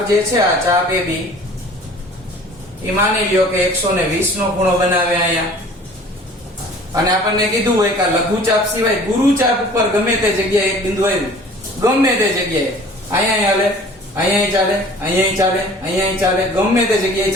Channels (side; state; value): both; normal; correlation 0.48